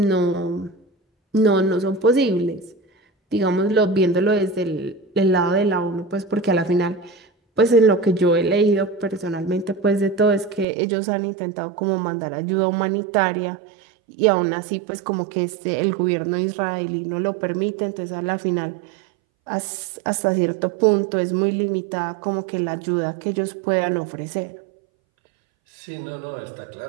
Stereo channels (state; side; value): drops out; left; at 10.7 s